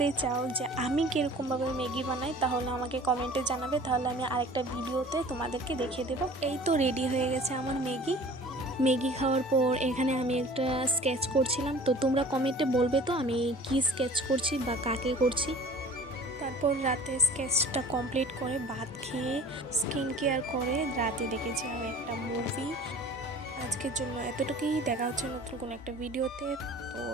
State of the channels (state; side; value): normal; both; correlation 0.46